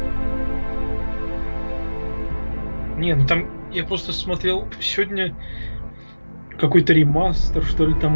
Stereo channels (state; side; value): inverted; both; correlation -1.00